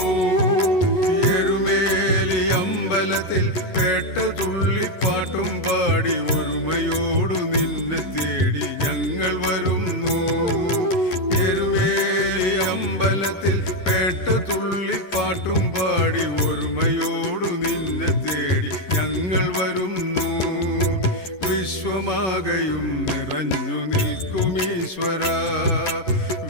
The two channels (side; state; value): right; late; 11 ms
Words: എഴുമേലി അമ്പലത്തിൽ പേട്ട തുള്ളിപ്പാട്ടും പാടി ഒരുമയോടു നിന്നെ തേടി ഞങ്ങൾ വരുന്നു. അമ്പലത്തിൽ പേട്ട തുള്ളിപ്പാട്ടും പാടി ഒരുമയോടു നിന്നെ തേടി ഞങ്ങൾ വരുന്നു. വിശ്വമാകയും നിറഞ്ഞു നിൽക്കുമീശ്വര.